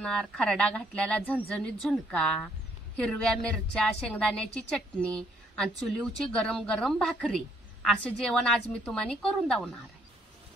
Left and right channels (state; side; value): normal; both; correlation 0.68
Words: खरडा घातलेला झणझणीत झुणका, हिरव्या मिरच्या, शेंगदाण्याची चटणी आणि चुलीवची गरम गरम भाकरी. असं जेवण आज मी तुम्हाला करून दावणार आहे.